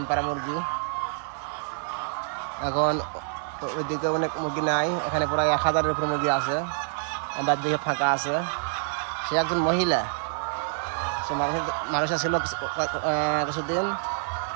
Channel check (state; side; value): silent; left; digital silence